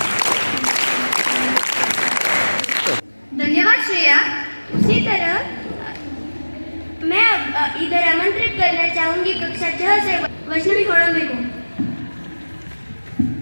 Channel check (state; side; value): inverted; both; correlation -1.00